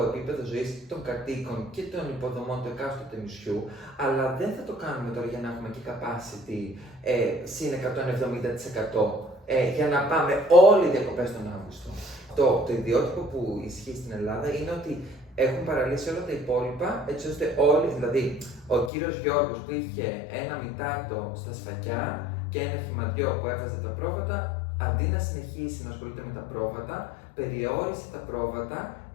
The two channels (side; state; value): right; drops out; at 18.9 s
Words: επίπεδο ζωής των κατοίκων και των υποδομών του εκάστοτε νησιού, αλλά δεν θα το κάνουμε τώρα για να έχουμε και capacity συν 170% για να πάμε όλοι οι διακοπές τον Αύγουστο. Το ιδιότυπο που ισχύει στην Ελλάδα είναι ότι έχουν παραλύσει όλα τα υπόλοιπα, έτσι ώστε όλοι, δηλαδή ο κύριος Γιώργος που είχε ένα μητάτο στα Σφακιά και ένα χυμαντιό που έβαζε τα πρόβατα, αντί να συνεχίσει να ασχολείται με τα πρόβατα, περιόρισε τα πρόβατα,